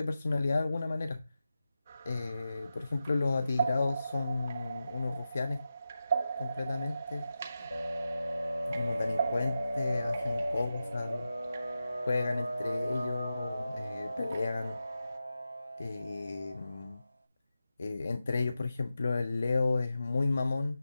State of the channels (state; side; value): inverted; both; correlation -0.91